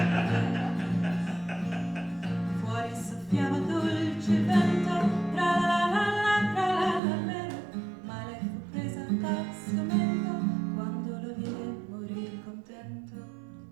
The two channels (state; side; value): drops out; left; at 7.0 s